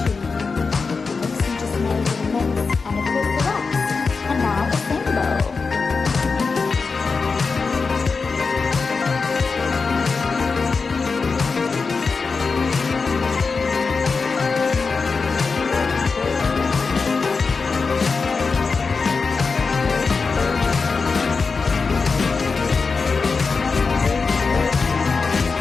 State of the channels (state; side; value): quieter; right; 4.6 dB